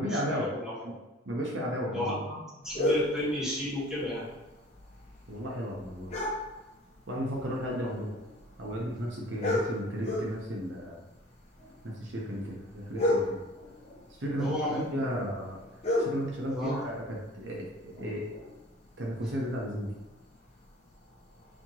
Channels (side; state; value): both; normal; correlation 0.48